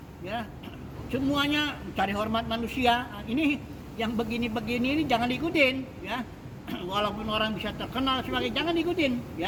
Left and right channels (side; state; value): both; identical; correlation 1.00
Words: ya. Semuanya cari hormat manusia. Ini yang begini-begini ini jangan diikutin ya. Walaupun orang bisa terkenal sebagai, jangan diikutin